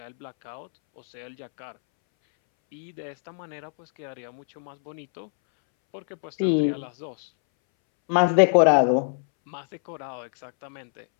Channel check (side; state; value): right; silent; 62 dB below the other